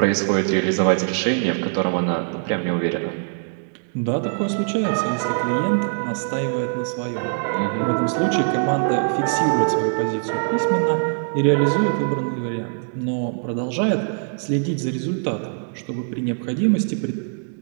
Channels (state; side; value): silent; left; digital silence